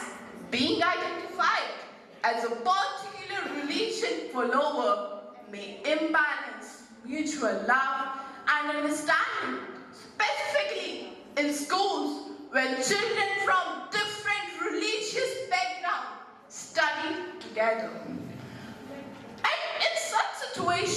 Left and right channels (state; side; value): identical; both; correlation 1.00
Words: being identified as a particular religion follower may imbalance mutual love and understanding, specifically in schools where children from different religious backgrounds study together. And in such